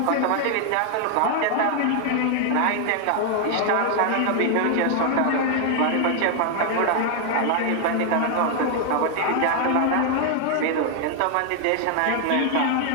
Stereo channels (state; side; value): different; both; correlation 0.00